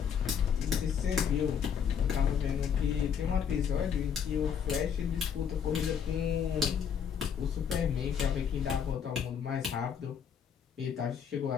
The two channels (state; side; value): quieter; right; 7.6 dB